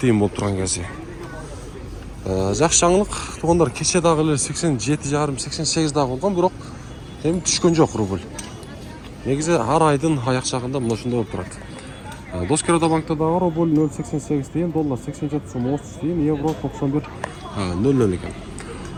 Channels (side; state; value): both; identical; correlation 1.00